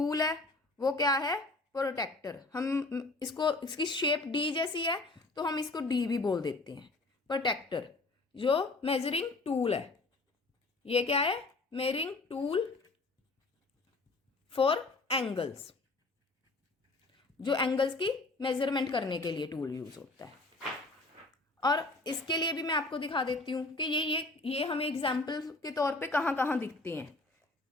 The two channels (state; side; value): quieter; right; 3.2 dB